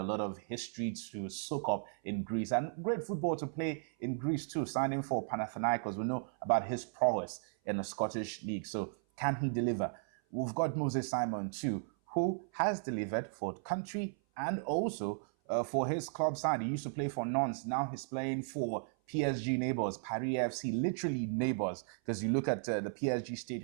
lot of history to soak up in Greece and great football to play in Greece too. Signing for Panathinaikos, we know about his prowess in the Scottish League. So can he deliver? We've got Moses Simon too, who has delivered for the country and also for his club side. He used to play for Nantes. Now he's playing for PSG neighbors, Paris FC, literally neighbors, because you look at the PSG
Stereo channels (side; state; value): left; silent; 54 dB below the other